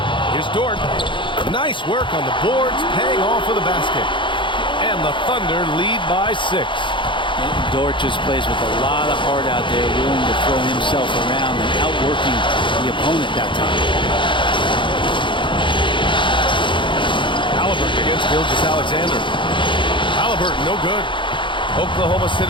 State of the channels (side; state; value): right; late; 0.24 ms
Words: Here's Dort. Nice work on the boards, paying off with a basket. And the Thunder lead by 6. Dort just plays with a lot of heart out there, willing to throw himself around and outworking the opponent that time. Halliburton against Gilgeous-Alexander. Halliburton, no good. Oklahoma